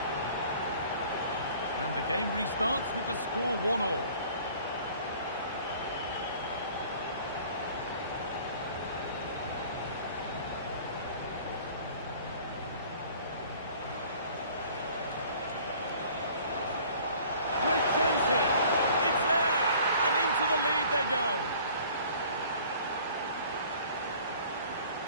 And the game restarts with the score 1-1. Great chance here. It's there. And into the lead they go.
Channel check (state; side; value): inverted; both; correlation -0.51